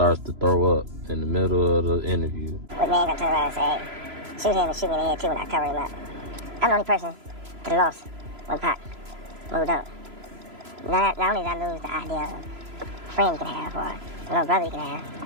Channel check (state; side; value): late; left; 3.0 ms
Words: to throw up in the middle of the interview. With me, I turn around and say, hey, shoot him and shoot me in the head too when I cover him up. I'm the only person that lost when Pac moved up. Not only did I lose the idea of a friend you can have or a little brother you can